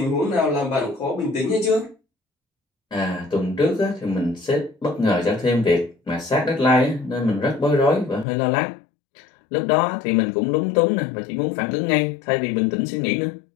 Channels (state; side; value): drops out; right; at 8.2 s